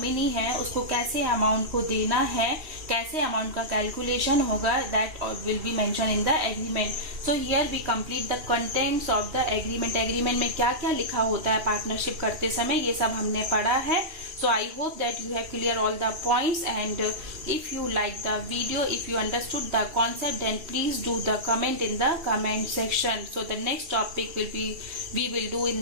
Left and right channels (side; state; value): left; late; 3.2 ms